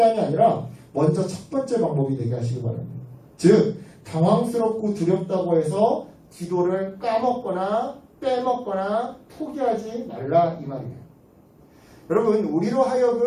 아니라 먼저 첫 번째 방법이 되게 하시기 바랍니다. 즉 당황스럽고 두렵다고 해서 기도를 까먹거나 빼먹거나 포기하지 말라 이 말이에요. 여러분 우리로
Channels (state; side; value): identical; both; correlation 1.00